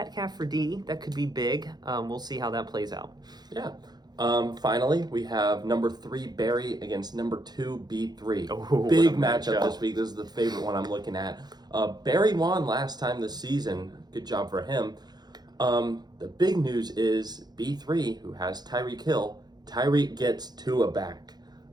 for D. That could be big. We'll see how that plays out. Yeah. Finally, we have number 3 Barry against number 2 B3. Oh, big what a matchup matchup. this week. This is the favorite one I'm looking at. Barry won last time this season. Good job for him. The big news is B3, who has Tyreek Hill. Tyreek gets Tua back.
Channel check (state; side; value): late; left; 0.20 ms